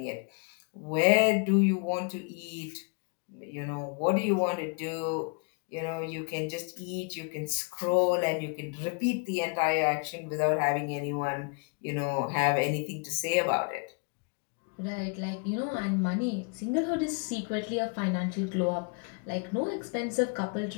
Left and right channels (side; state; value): right; quieter; 34.7 dB